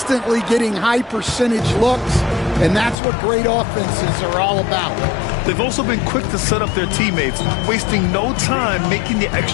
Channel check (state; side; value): drops out; right; at 3.0 s